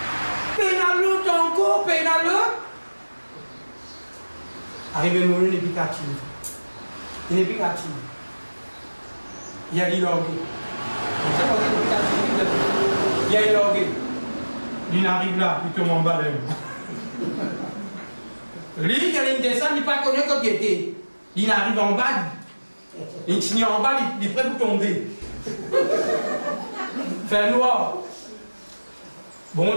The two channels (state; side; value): inverted; both; correlation -1.00